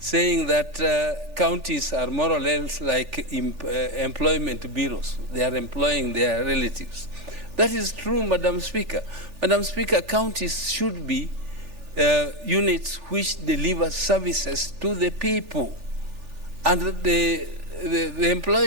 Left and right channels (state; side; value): late; left; 3.4 ms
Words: that counties are more or less like employment bureaus. They are employing their relatives. That is true, Madam Speaker. Madam Speaker, counties should be units which deliver services to the people. And the